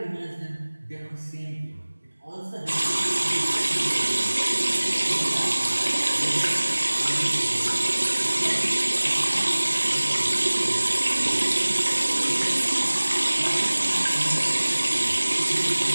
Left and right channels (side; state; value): both; inverted; correlation -1.00